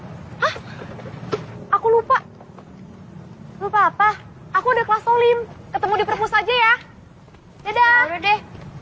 Hah? Aku lupa. Lupa apa? Aku udah kelas Olim. Ketemu di perpus aja ya. Dadah. Udah deh.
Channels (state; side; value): identical; both; correlation 1.00